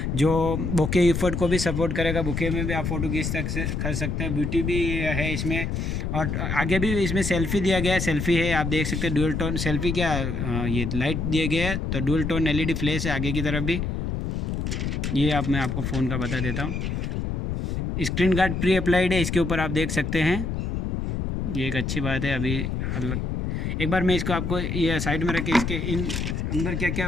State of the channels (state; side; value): noise; left; rumble, 2 dB below the sound